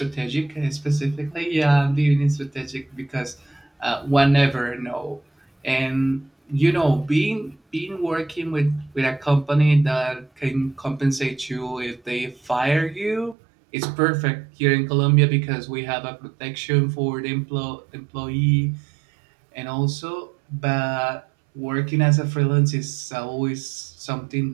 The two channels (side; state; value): left; drops out; at 13.4 s